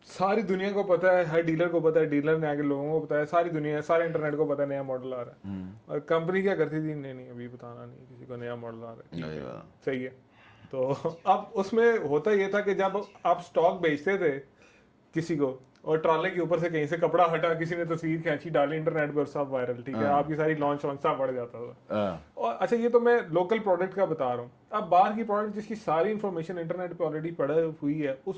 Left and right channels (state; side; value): identical; both; correlation 1.00